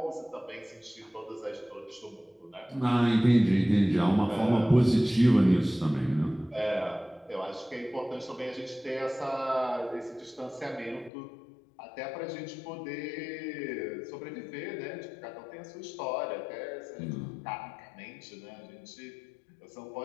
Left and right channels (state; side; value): drops out; right; at 11.1 s